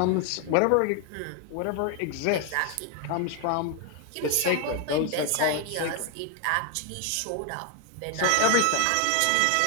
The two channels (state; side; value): different; both; correlation 0.01